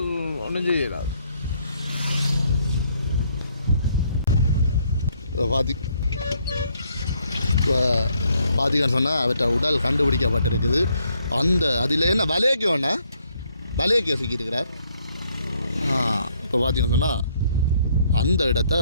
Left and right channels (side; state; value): both; inverted; correlation -0.70